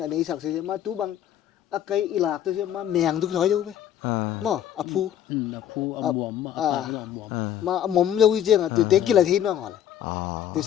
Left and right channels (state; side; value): quieter; right; 10.6 dB